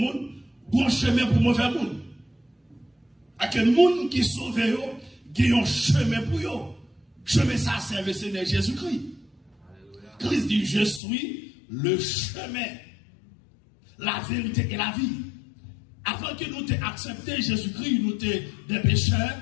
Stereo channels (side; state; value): right; drops out; at 11.0 s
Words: bon chemin pour mauvais monde. À quel monde qui sauve, il y a un chemin pour eux. Chemin, ça serve le Seigneur Jésus-Christ. Christ dit, je suis le chemin, la vérité et la vie. Avant que nous t'ayons accepté Jésus-Christ, nous étions des pécheurs